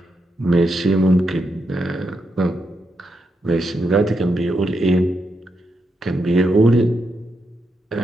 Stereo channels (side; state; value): both; normal; correlation 0.83